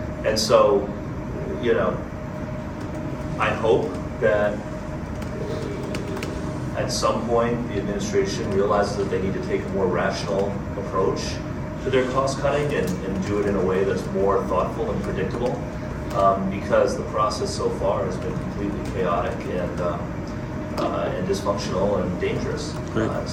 And so, you know, I hope that at some point the administration realizes that they need to take a more rational approach to their cost cutting and do it in a way that's more thoughtful and predictable, because the process so far has been completely chaotic and dysfunctional and dangerous Right. in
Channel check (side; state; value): both; identical; correlation 1.00